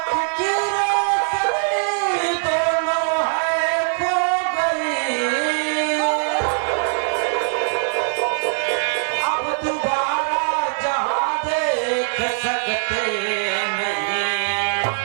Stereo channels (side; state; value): left; silent; digital silence